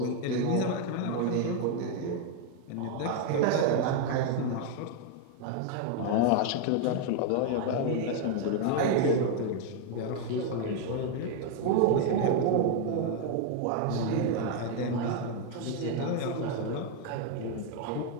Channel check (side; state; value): both; different; correlation 0.01